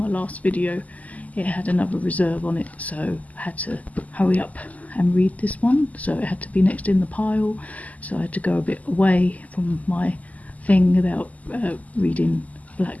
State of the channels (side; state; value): right; late; 0.075 ms